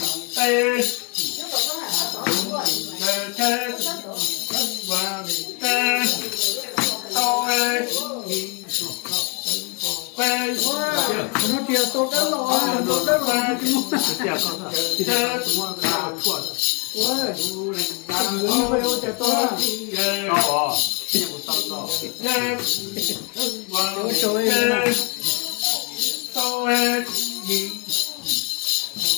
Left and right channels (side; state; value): right; quieter; 32.0 dB